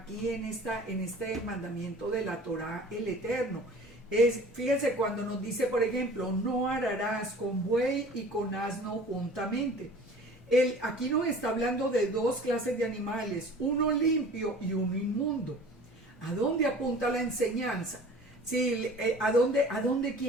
en este mandamiento de la Torá, el Eterno? Fíjese cuando nos dice, por ejemplo, no ararás con buey y con asno juntamente. Aquí nos está hablando de dos clases de animales, uno limpio y uno inmundo. ¿A dónde apunta la enseñanza? ¿A dónde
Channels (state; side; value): normal; both; correlation 0.45